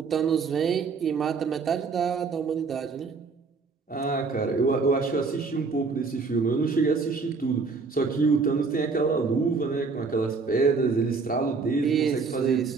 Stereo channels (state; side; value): quieter; left; 4.6 dB